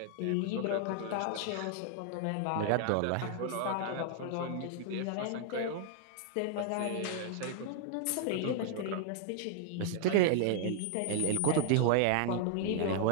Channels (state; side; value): different; both; correlation -0.01